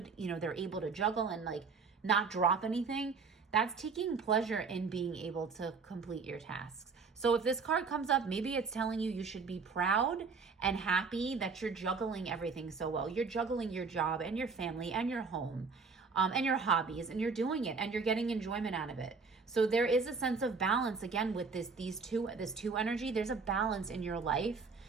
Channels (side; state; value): left; quieter; 4.9 dB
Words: they're able to juggle and like not drop anything. That's taking pleasure in being able to complete your tasks. So if this card comes up, maybe it's telling you should be proud and happy that you're juggling everything so well. You're juggling your job and your family and your home and your hobbies, and you're doing it and you're getting enjoyment out of it. So there is a sense of balance again with this two energy. There's a balance in your life